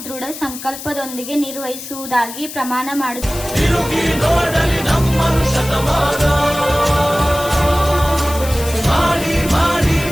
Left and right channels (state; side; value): noise; left; hiss, 11 dB below the sound